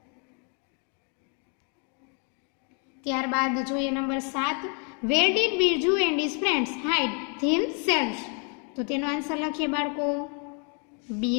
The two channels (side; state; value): right; quieter; 38.4 dB